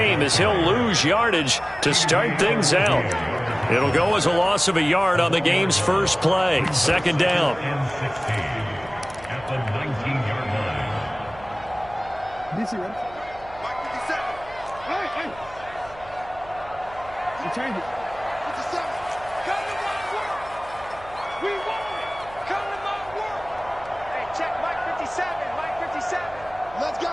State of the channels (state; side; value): noise; right; hum, 20 dB below the sound